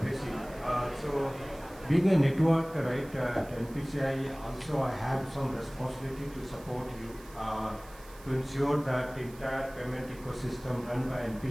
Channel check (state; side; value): noise; right; hiss, 22 dB below the sound